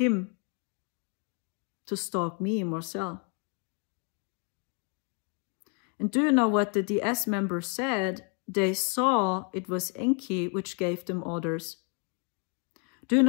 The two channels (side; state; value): right; quieter; 37.8 dB